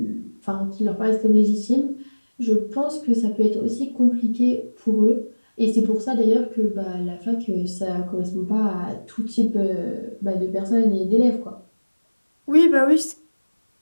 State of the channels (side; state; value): both; inverted; correlation -1.00